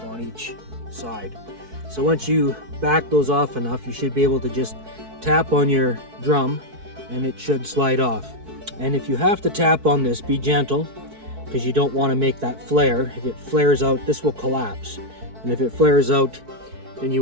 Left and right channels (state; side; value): late; left; 4.6 ms